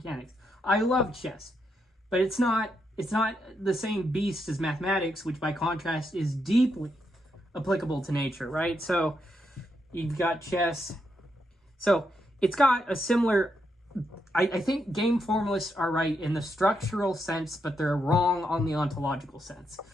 I love chess, but it's not the same beast as mathematics, which by contrast is deeply applicable to nature, right? So you've got chess. So it's got a similar... I think game formalists are right in the structural sense, but they're wrong on the ontological sense.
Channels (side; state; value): both; normal; correlation 0.81